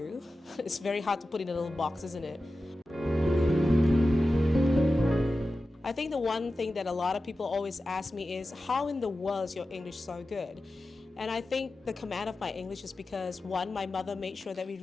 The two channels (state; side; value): normal; both; correlation 0.93